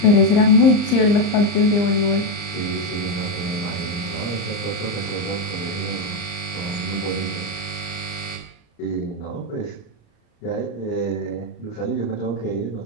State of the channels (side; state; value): right; late; 34 ms